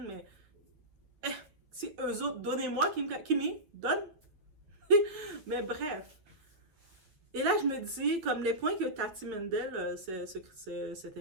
mais si eux autres, donnez-moi Kimi, donne. Mais bref. Et là, je me dis, comme les points que Tati Mendel, cet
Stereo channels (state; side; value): late; left; 9.6 ms